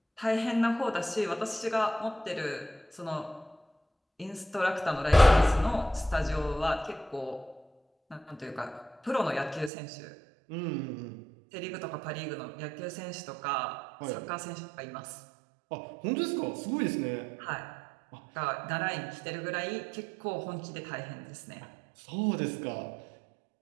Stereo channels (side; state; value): left; drops out; at 9.7 s